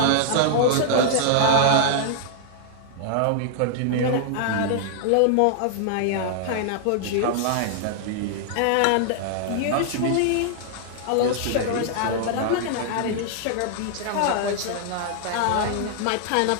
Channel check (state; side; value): different; both; correlation -0.01